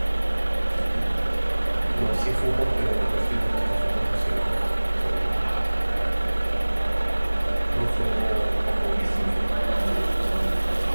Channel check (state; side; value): inverted; both; correlation -1.00